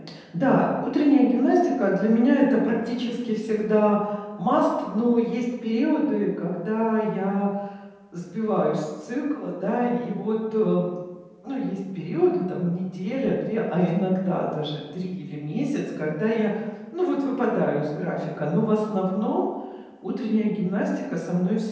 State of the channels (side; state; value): both; identical; correlation 1.00